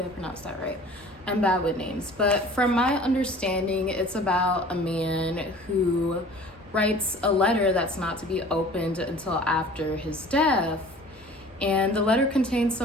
I pronounced that right. I'm bad with names, but from my understanding, it's about a man who writes a letter that's not to be opened until after his death. And the letter contains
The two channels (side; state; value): both; normal; correlation 0.46